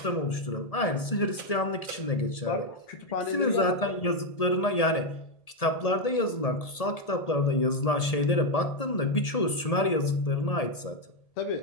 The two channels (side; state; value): right; late; 1.7 ms